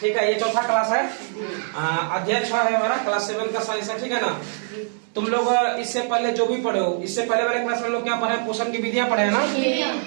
है, ये चौथा क्लास है, अध्याय 6 है हमारा, क्लास 7 का साइंस है। ठीक है ना। तुम लोग इससे पहले जो भी पढ़े हो, इससे पहले वाले क्लास में हम लोग क्या पढ़े, पोषण की विधियां पढ़े हैं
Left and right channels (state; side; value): silent; left; 63 dB below the other